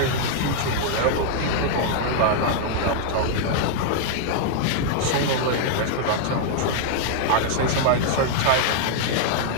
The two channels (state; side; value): different; both; correlation -0.01